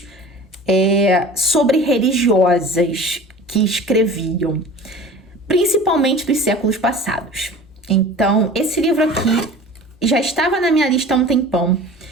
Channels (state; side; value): normal; both; correlation 0.40